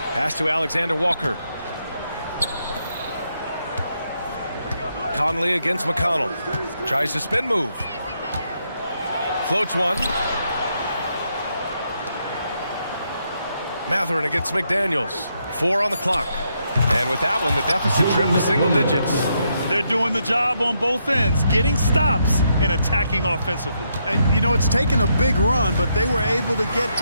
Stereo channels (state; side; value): inverted; both; correlation -0.78